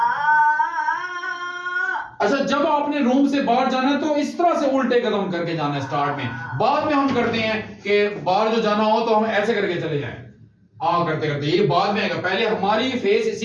अच्छा, जब आपने रूम से बाहर जाना है तो इस तरह से उल्टे कदम करके जाना है स्टार्ट में। बाद में हम करते हैं कि बाहर जो जाना हो तो हम ऐसे करके चले जाएं, करते करते, ये बाद में आएगा। पहले हमारी फेस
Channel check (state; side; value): identical; both; correlation 1.00